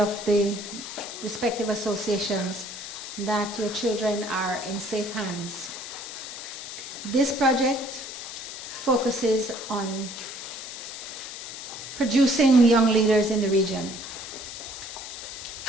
the respective associations, that your children are in safe hands. This project focuses on producing young leaders in the region.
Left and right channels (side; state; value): left; noise; hiss, 10 dB below the sound